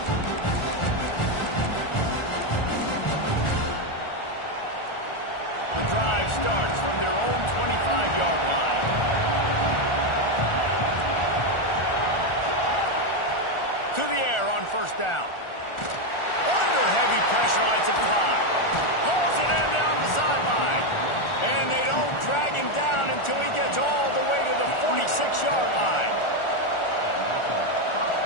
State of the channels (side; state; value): right; late; 1.4 ms